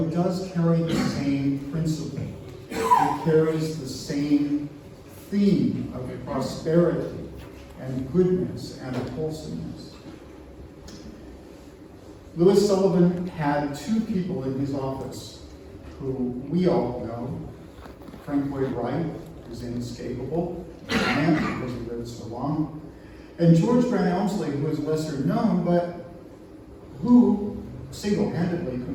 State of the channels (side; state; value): both; identical; correlation 1.00